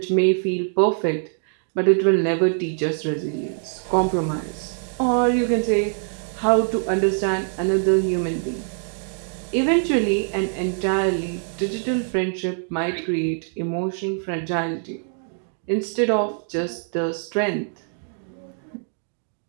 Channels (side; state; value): left; silent; 63 dB below the other